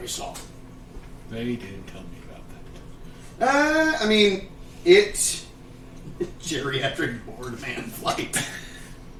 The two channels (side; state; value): both; identical; correlation 1.00